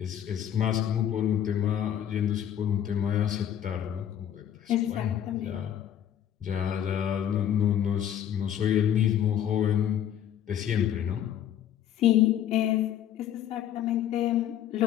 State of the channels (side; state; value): right; quieter; 10.3 dB